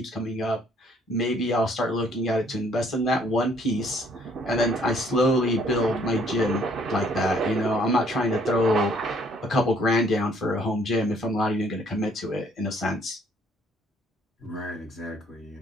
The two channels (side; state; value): both; normal; correlation 0.63